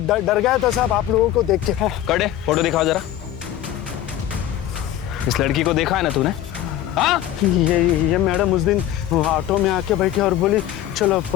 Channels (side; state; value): right; quieter; 12.4 dB